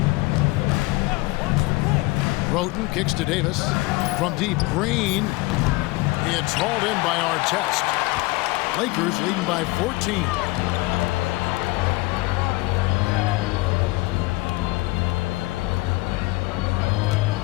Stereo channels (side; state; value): right; quieter; 22.3 dB